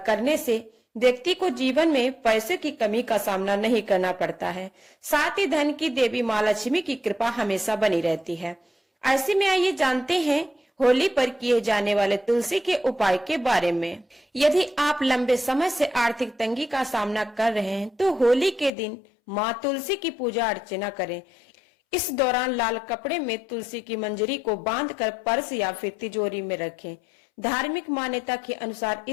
करने से व्यक्ति को जीवन में पैसे की कमी का सामना नहीं करना पड़ता है। साथ ही धन की देवी माँ लक्ष्मी की कृपा हमेशा बनी रहती है। ऐसे में आइए जानते हैं होली पर किए जाने वाले तुलसी के उपाय के बारे में। यदि आप लंबे समय से आर्थिक तंगी का सामना कर रहे हैं तो होली के दिन माँ तुलसी की पूजा अर्चना करें। इस दौरान लाल कपड़े में तुलसी की मंजरी को बांधकर पर्स या फिर तिजोरी में रखें। धार्मिक मान्यता के अनुसार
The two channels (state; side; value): drops out; right; at 18.7 s